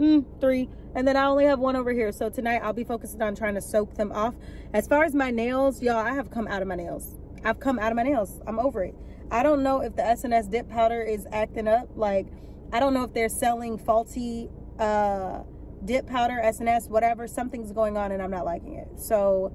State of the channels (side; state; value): both; identical; correlation 1.00